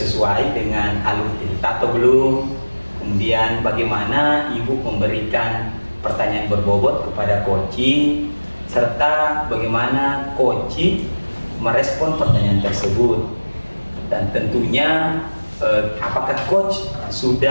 dengan alur kita atau belum? Kemudian bagaimana Ibu memberikan pertanyaan berbobot kepada coaching, serta bagaimana coaching merespon pertanyaan tersebut. Dan tentunya apakah coach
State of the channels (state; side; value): inverted; both; correlation -1.00